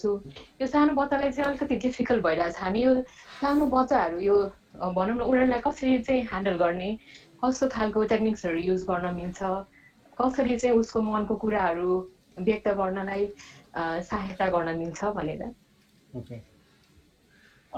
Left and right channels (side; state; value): both; identical; correlation 1.00